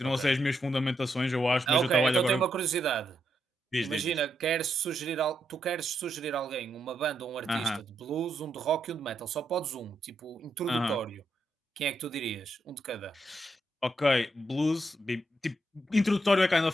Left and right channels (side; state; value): both; normal; correlation 0.81